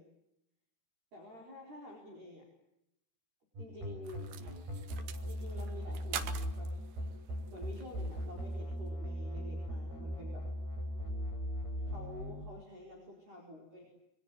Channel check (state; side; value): late; left; 14 ms